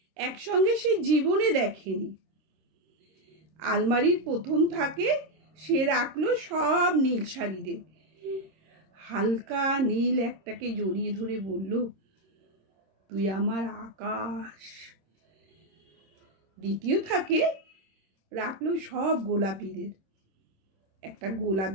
একসঙ্গে সে জীবনে দেখেনি। আলমারির প্রথম থাকে সে রাখলো সব নীল শাড়িদের। হালকা নীল একটাকে জড়িয়ে ধরে বলল, তুই আমার আকাশ। দ্বিতীয় থাকে রাখলো সব গোলাপিদের। একটা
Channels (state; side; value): late; left; 26 ms